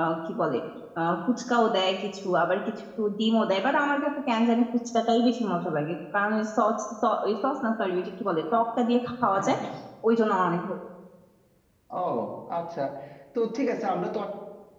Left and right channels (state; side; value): identical; both; correlation 1.00